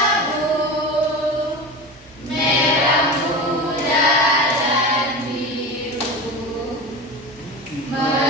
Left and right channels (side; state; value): both; normal; correlation 0.28